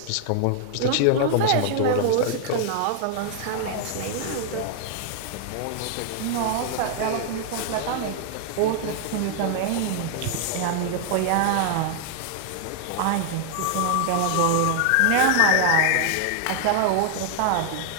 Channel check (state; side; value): different; both; correlation 0.00